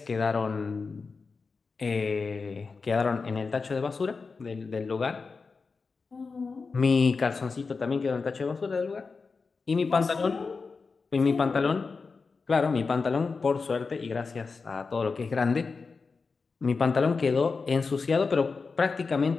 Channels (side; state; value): right; quieter; 4.6 dB